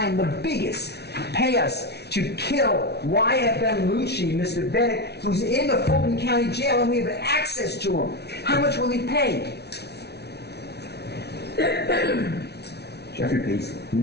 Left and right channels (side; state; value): right; late; 0.49 ms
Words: the biggest, pay us to kill YSL Lucci, Mr. Bennett, who's in the Fulton County Jail and we have access to him? How much will he pay? Jeffrey pays